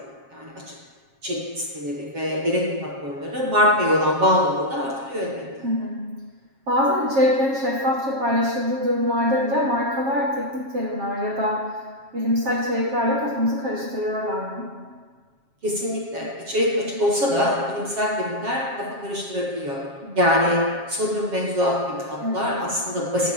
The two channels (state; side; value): late; left; 7.4 ms